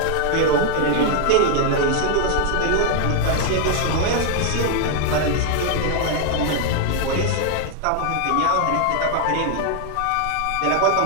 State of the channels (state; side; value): different; both; correlation 0.00